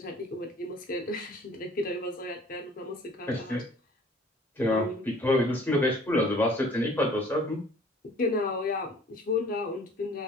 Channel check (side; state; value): both; normal; correlation 0.52